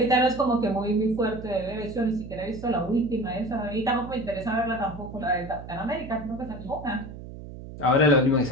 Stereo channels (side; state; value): right; noise; hum, 13 dB below the sound